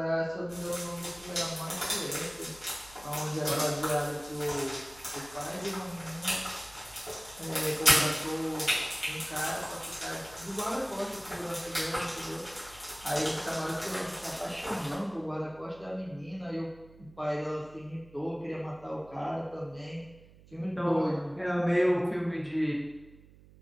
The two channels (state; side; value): noise; right; hum, 23 dB below the sound